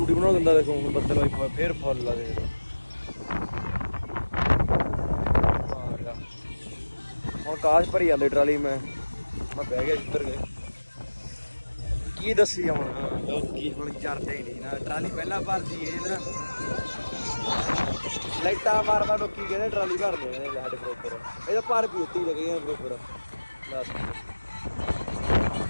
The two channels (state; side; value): inverted; both; correlation -1.00